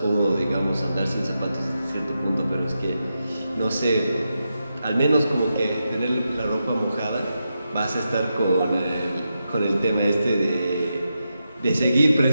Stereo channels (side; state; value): both; inverted; correlation -0.87